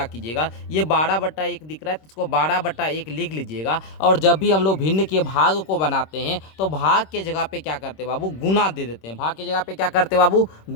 कीजिएगा, ये 12/1 दिख रहा है तो इसको 12/1 लिख लीजिएगा। और जब भी हम लोग भिन्न के भाग को बनाते हैं तो भाग के जगह पे क्या करते हैं बाबू, गुना दे देते हैं। भाग के जगह पे क्या करते हैं बाबू,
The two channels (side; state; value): right; late; 26 ms